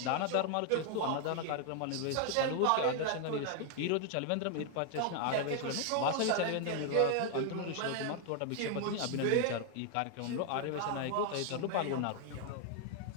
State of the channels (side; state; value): both; different; correlation 0.00